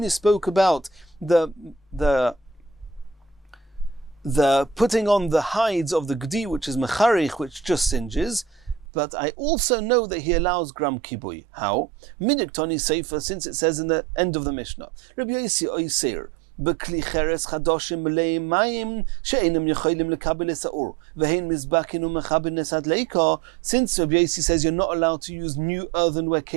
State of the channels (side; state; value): left; drops out; at 8.8 s